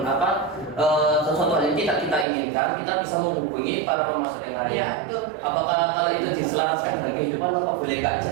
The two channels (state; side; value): drops out; left; at 2.2 s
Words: sesuatu hal yang tidak kita inginkan, kita bisa menghubungi para pemasok yang lain. Iya, betul. Apakah kalau itu diselaraskan dengan kehidupan, apa boleh kak?